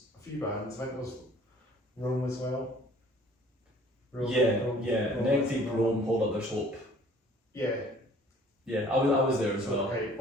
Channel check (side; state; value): both; normal; correlation 0.53